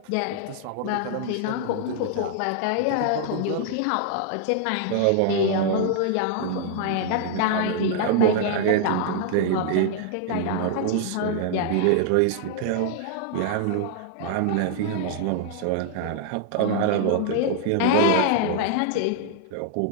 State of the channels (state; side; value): different; both; correlation -0.01